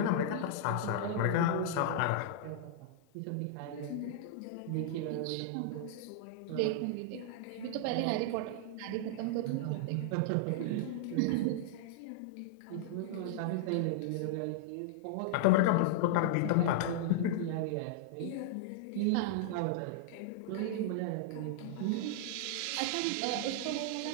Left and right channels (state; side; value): different; both; correlation -0.01